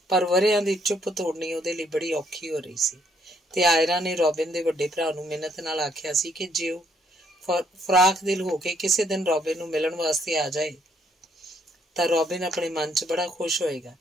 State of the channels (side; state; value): both; normal; correlation 0.69